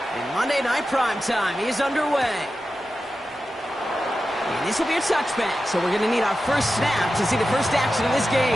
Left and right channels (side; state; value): both; normal; correlation 0.92